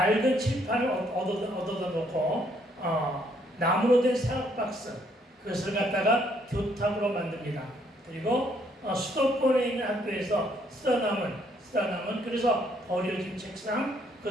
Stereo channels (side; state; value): both; normal; correlation 0.68